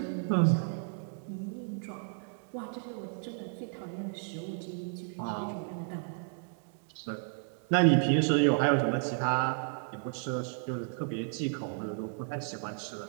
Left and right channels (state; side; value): silent; left; 56 dB below the other